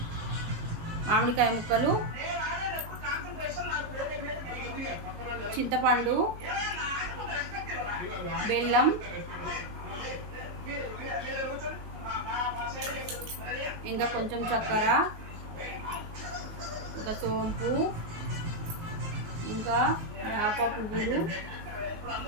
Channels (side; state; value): left; late; 19 ms